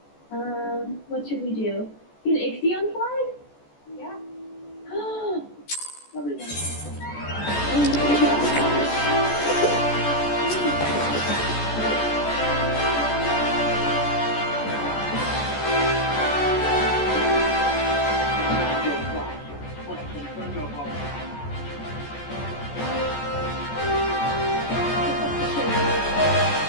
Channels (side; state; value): right; late; 14 ms